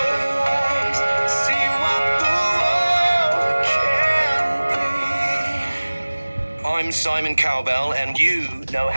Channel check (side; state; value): both; inverted; correlation -1.00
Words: I'm Simon Cowbell, and you know